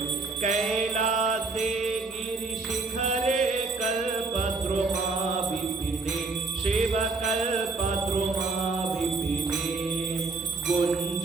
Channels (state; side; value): quieter; left; 3.8 dB